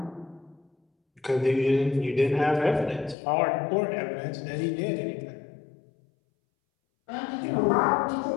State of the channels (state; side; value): drops out; right; at 3.2 s